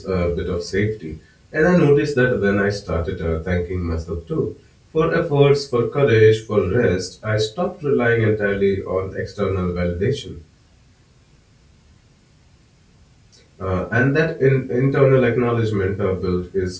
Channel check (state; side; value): identical; both; correlation 1.00